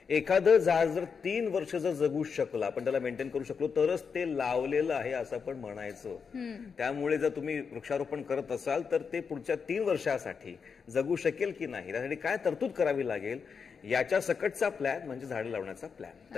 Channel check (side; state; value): right; quieter; 5.9 dB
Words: एखादं झाड जर 3 वर्ष जर जगू शकलं, आपण त्याला मेंटेन करू शकलो, तरच ते लावलेलं आहे असं आपण म्हणायचं. त्यामुळे जर तुम्ही वृक्षारोपण करत असाल तर ते पुढच्या 3 वर्षासाठी जगू शकेल की नाही, त्यासाठी काय तरतूद करावी लागेल याच्या सकटचा प्लॅन म्हणजे झाडं लावण्याचा प्लॅन.